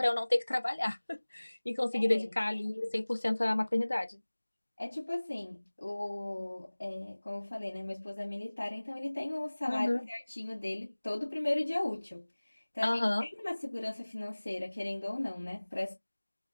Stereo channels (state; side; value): inverted; both; correlation -1.00